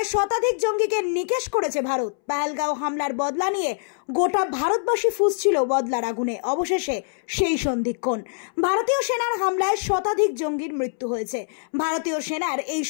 শতাধিক জঙ্গিকে নিকেশ করেছে ভারত। পহেলগাঁও হামলার বদলা নিয়ে গোটা ভারতবাসী ফুঁসছিল বদলার আগুনে। অবশেষে সেই সন্ধিক্ষণ। ভারতীয় সেনার হামলায় শতাধিক জঙ্গির মৃত্যু হয়েছে। ভারতীয় সেনার এই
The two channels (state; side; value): silent; right; 63 dB below the other